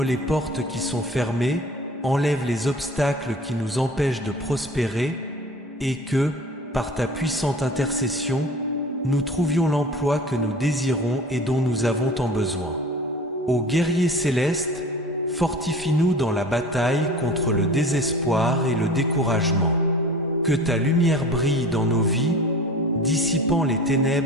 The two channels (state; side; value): normal; both; correlation 0.40